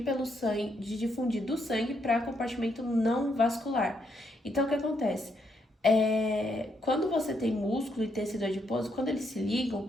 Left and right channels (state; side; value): normal; both; correlation 0.76